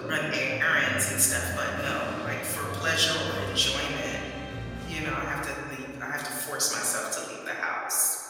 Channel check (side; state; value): both; identical; correlation 1.00